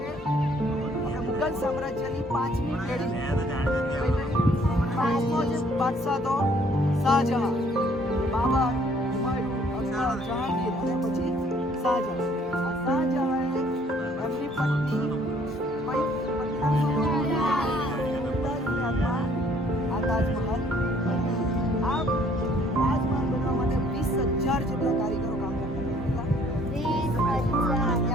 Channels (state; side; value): normal; both; correlation 0.61